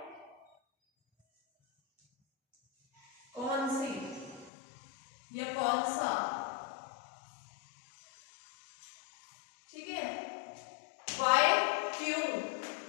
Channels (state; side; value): drops out; right; at 4.5 s